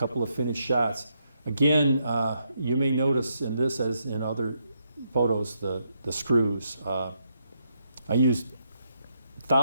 of finished shots. Again, you may notice in this, as in other photos, the screws. I used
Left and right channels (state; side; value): inverted; both; correlation -0.79